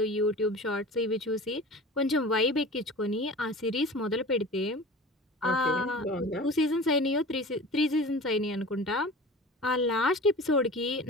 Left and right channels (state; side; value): normal; both; correlation 0.38